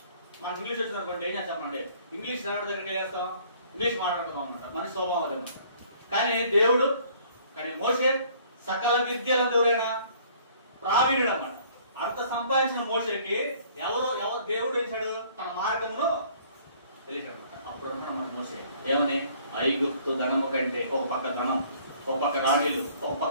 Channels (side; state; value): both; inverted; correlation -0.57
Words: మనకి ఇంగ్లీష్ వచ్చింది అనుకోండి, ఏం చేస్తామండి? ఇంగ్లీష్ నాడు దగ్గర చేస్తాం, ఇంగ్లీష్ మాట్లాడతాం అనమాట. మన స్వభావం అదనమాట. కానీ మోషే సకల విద్యలు ఎవరైనా ప్రావీణుడు అన్నమాట. అంత సంపాదించిన మోషేకి ఎవరు దేవుడు వేశాడు? తన మార్గమును తెలిసాడు అనమాట. అప్పుడు అన్నమాట మోషే ఏమని? ఐగుప్తు ధనము కంటే, ఒక పక్క ధనం, ఒక పక్క రాణీలు, ఒక